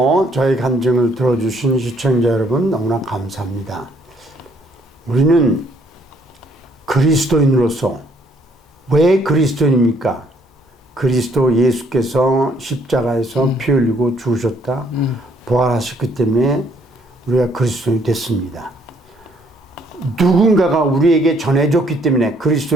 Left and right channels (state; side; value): normal; both; correlation 0.66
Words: 저희 간증을 들어주신 시청자 여러분 너무나 감사합니다. 우리는 그리스도인으로서 왜 그리스도인입니까? 그리스도 예수께서 십자가에서 피 흘리고 죽으셨다. 부활하셨기 때문에 우리가 그리스도인이 됐습니다. 누군가가 우리에게 전해줬기 때문에